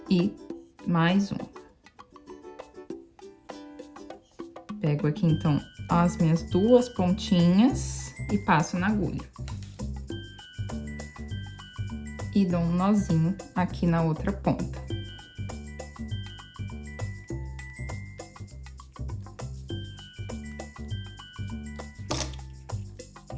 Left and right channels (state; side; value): identical; both; correlation 1.00